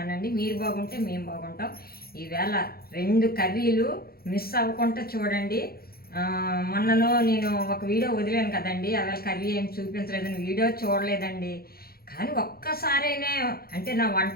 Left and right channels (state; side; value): late; right; 0.44 ms